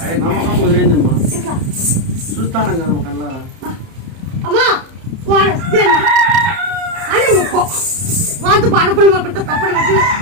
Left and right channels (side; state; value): left; late; 31 ms